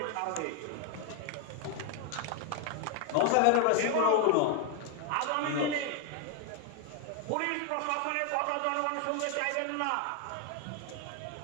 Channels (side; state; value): both; different; correlation 0.00